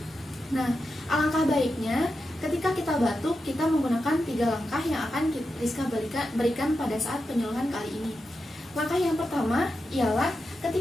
Nah, alangkah baiknya ketika kita batuk, kita menggunakan 3 langkah yang akan Rizka berikan pada saat penyuluhan kali ini. Langkah yang pertama ialah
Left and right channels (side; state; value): both; normal; correlation 0.89